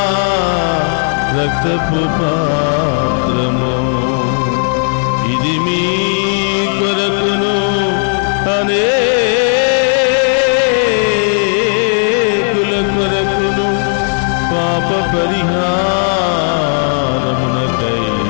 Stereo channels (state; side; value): silent; right; 59 dB below the other